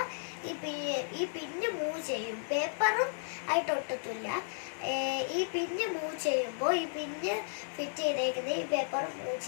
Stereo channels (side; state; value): right; silent; digital silence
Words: ഈ പിന്ന് മൂവ് ചെയ്യും. പേപ്പറും ആയിട്ട് ഒട്ടത്തില്ല. ഈ പിന്ന് മൂവ് ചെയ്യുമ്പോൾ ഈ പിന്ന് ഫിറ്റ് ചെയ്തേക്കുന്നത് ഈ പേപ്പർ മൂവ്